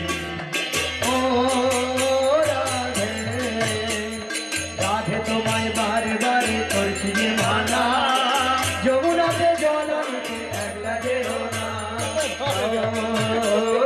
ओ राधे राधे তোমায় বারে বারে করছি যে মানা যমুনাতে জল আনতে একলা যেও না ও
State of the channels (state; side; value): identical; both; correlation 1.00